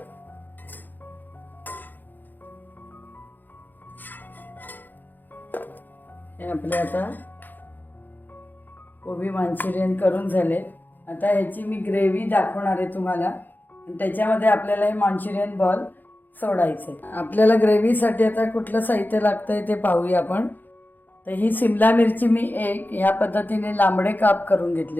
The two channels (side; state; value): right; late; 0.087 ms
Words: हे आपले आता कोबी मंचुरियन करून झाले. आता ह्याची मी ग्रेव्ही दाखवणार आहे तुम्हाला आणि त्याच्यामध्ये आपल्याला हे मंचुरियन बॉल सोडायचे. आपल्याला ग्रेव्हीसाठी आता कुठलं साहित्य लागतंय ते पाहूया आपण. तर ही सिमला मिरची मी ह्या पद्धतीने लांबडे काप करून